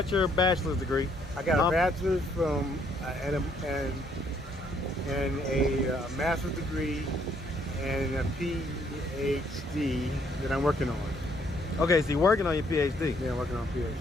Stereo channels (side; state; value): both; normal; correlation 0.68